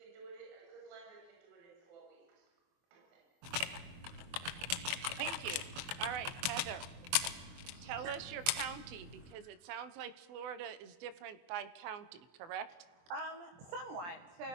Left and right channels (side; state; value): left; late; 23 ms